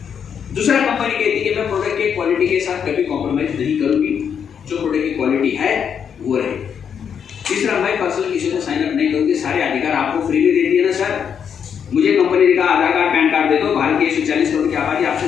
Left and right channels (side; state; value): right; quieter; 7.6 dB